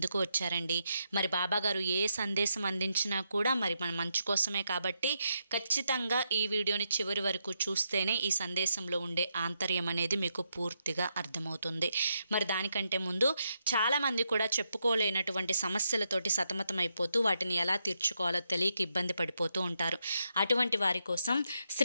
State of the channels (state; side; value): inverted; both; correlation -0.82